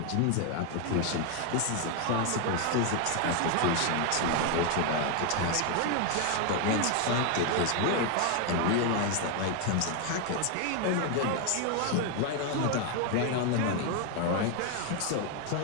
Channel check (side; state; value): both; different; correlation 0.01